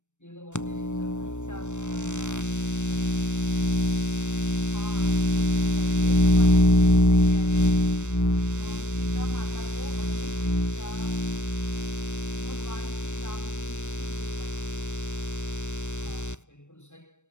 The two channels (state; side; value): late; right; 0.84 ms